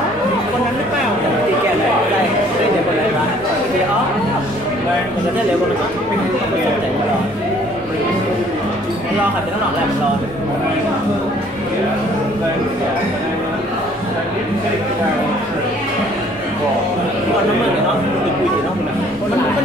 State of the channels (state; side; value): normal; both; correlation 0.58